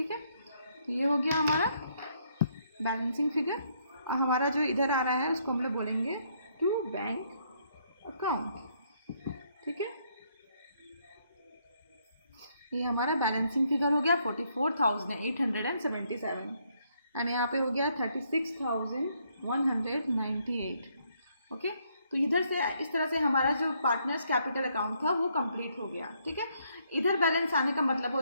है, तो ये हो गया हमारा बैलेंसिंग फिगर। और हमारा जो इधर आ रहा है उसको हम लोग बोलेंगे टू बैंक अकाउंट। ठीक है, ये हमारा बैलेंसिंग फिगर हो गया 44,877 एंड यहाँ पे हो गया 36,198। ओके, तो इधर से इस तरह से हमारा जो पार्टनर्स कैपिटल अकाउंट था वो कंप्लीट हो गया। ठीक है, इधर बैलेंस आने का मतलब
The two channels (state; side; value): inverted; both; correlation -0.71